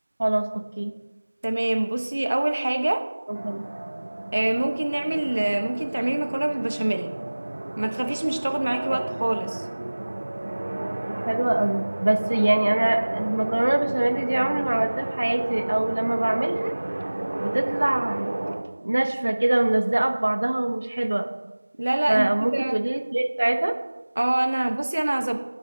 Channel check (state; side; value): inverted; both; correlation -1.00